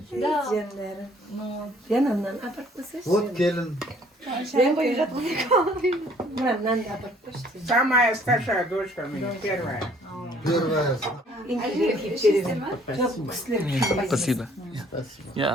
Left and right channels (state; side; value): normal; both; correlation 0.59